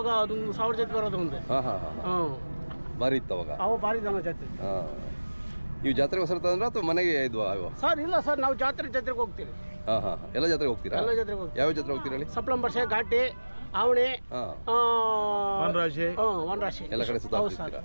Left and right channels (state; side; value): inverted; both; correlation -1.00